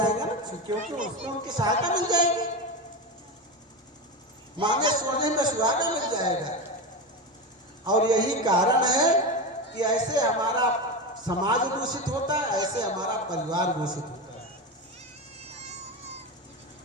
क्योंकि उसको उनकी सहायता मिल जाएगी, मांगे सोने में सुहागा मिल जाएगा। और यही कारण है कि ऐसे हमारा समाज दूषित होता है, ऐसे हमारा परिवार दूषित होता है।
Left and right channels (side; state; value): both; normal; correlation 0.19